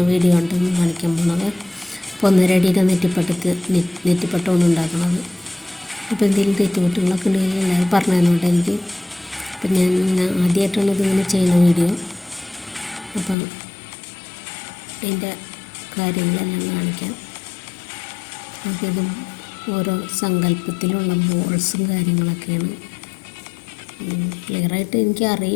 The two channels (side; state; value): right; drops out; at 13.4 s